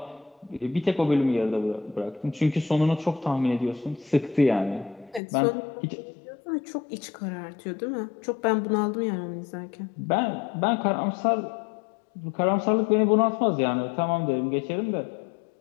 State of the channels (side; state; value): right; drops out; at 5.2 s